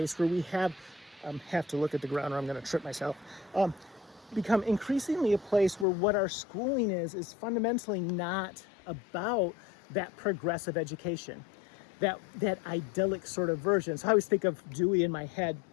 where we have to look at the ground or I'm going to trip myself. Become increasingly a place where what our schooling is fundamentally not about that progressive education, that idyllic sort of version. So I always think of Dewey in my head.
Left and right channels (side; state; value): right; drops out; at 5.9 s